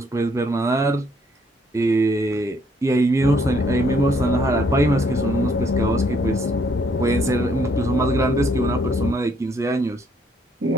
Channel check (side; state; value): both; normal; correlation 0.68